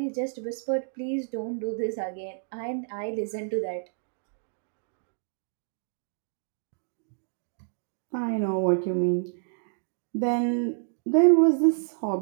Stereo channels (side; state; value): left; silent; digital silence